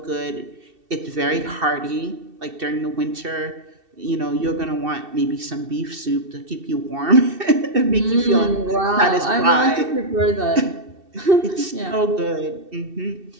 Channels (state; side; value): late; left; 2.7 ms